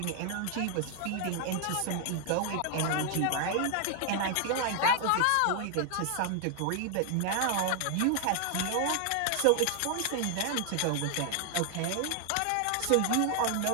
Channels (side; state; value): both; different; correlation 0.00